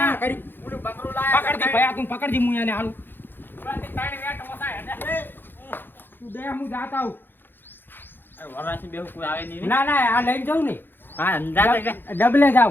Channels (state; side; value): late; right; 0.098 ms